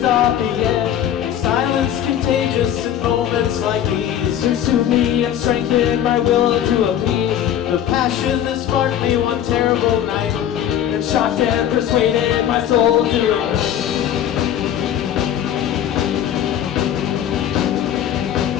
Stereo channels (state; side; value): quieter; right; 10.4 dB